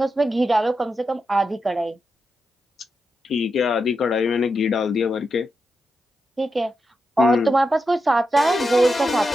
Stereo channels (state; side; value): normal; both; correlation 0.87